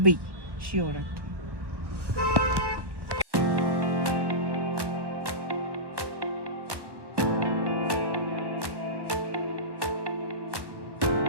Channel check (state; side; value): late; left; 1.1 ms